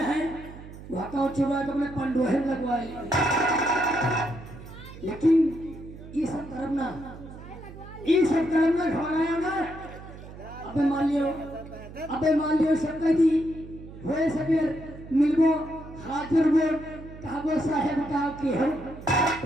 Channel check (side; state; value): right; noise; hum, 15 dB below the sound